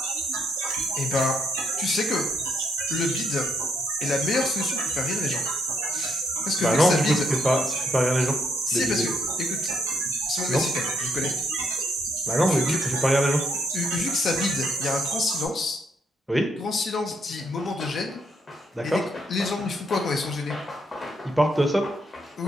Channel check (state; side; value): normal; both; correlation 0.72